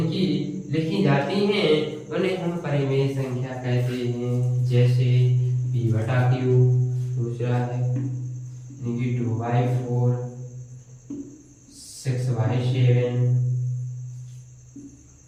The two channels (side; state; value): both; identical; correlation 1.00